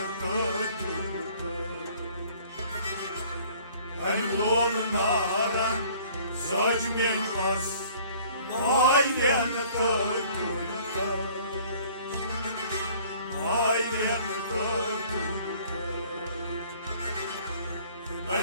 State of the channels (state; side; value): inverted; both; correlation -0.54